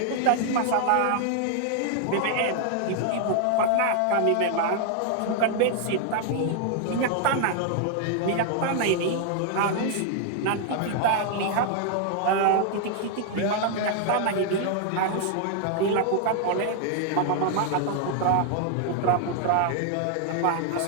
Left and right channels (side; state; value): both; different; correlation 0.00